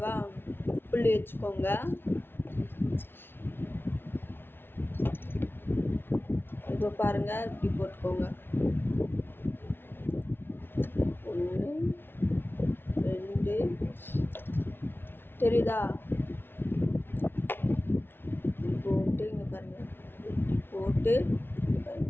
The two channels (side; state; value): right; late; 0.11 ms